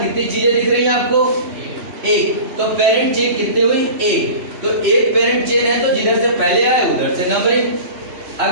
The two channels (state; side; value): late; left; 3.0 ms